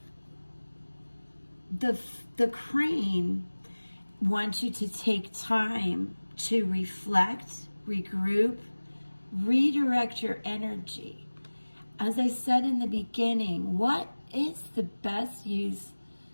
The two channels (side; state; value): both; inverted; correlation -1.00